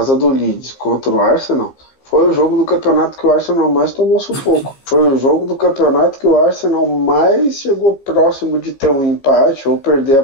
do Leeds contra o Arsenal, foi o jogo do campeonato que o Arsenal mais tomou sufoco. Foi o jogo do campeonato que o Arsenal mais chegou próximo de ter um empate ou perder a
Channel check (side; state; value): right; late; 15 ms